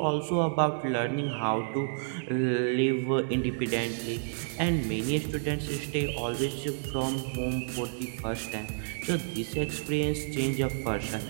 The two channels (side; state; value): left; silent; 56 dB below the other